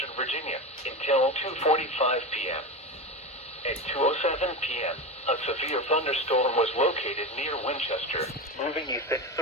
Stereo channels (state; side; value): normal; both; correlation 0.21